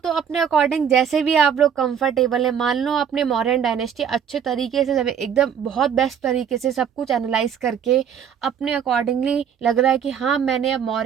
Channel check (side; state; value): left; quieter; 8.1 dB